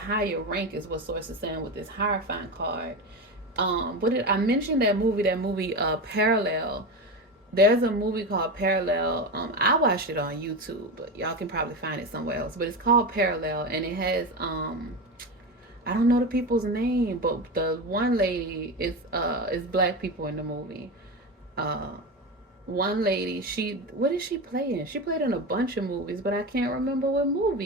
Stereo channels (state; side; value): normal; both; correlation 0.20